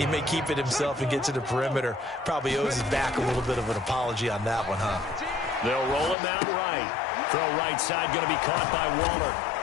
may keep it himself and get to the perimeter. Probably owes his back a little bit of an apology on that one, huh? They'll roll him out right. Throw right side going to be caught by Waller.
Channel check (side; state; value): right; drops out; at 6.2 s